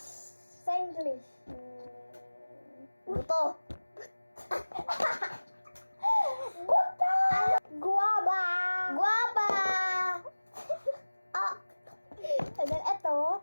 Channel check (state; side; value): inverted; both; correlation -1.00